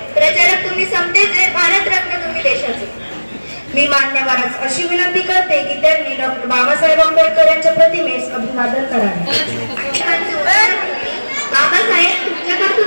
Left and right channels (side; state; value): both; inverted; correlation -1.00